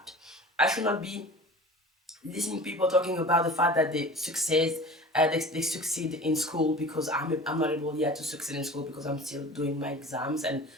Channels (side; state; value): both; normal; correlation 0.40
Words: I should not be listening to people talking about the fact that they succeed in school because I'm not able yet to succeed in school because I'm still doing my exams, and